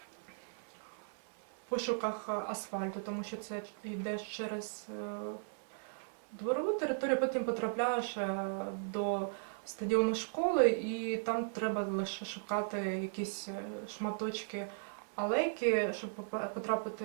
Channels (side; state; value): left; silent; 53 dB below the other